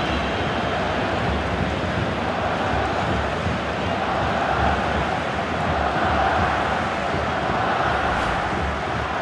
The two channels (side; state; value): both; identical; correlation 1.00